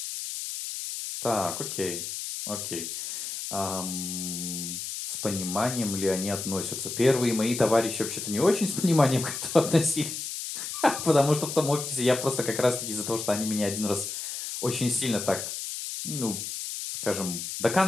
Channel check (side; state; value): left; noise; hiss, 6 dB below the sound